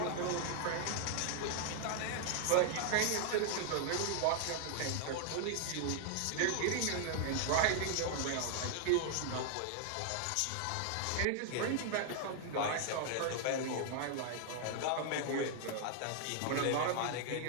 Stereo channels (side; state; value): both; different; correlation 0.00